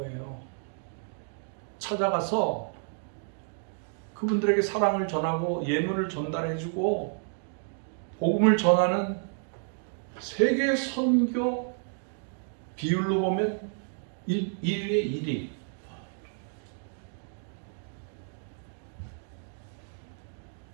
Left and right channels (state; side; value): silent; left; 58 dB below the other